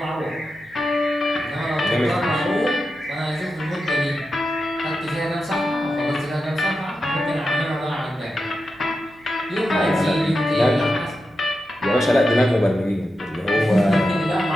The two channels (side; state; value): right; noise; hum, 29 dB below the sound